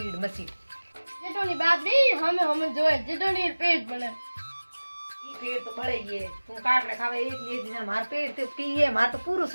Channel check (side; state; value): both; inverted; correlation -1.00